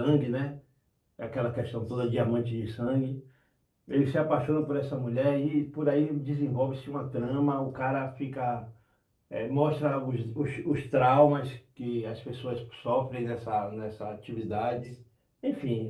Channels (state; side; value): identical; both; correlation 1.00